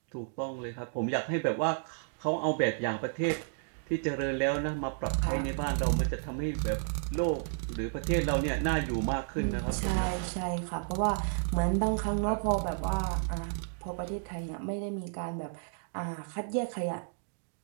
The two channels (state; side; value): silent; left; digital silence